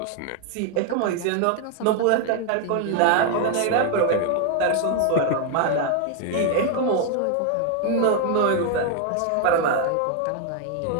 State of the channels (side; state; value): both; different; correlation 0.00